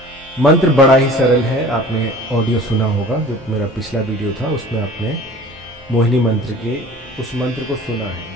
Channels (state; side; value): normal; both; correlation 0.44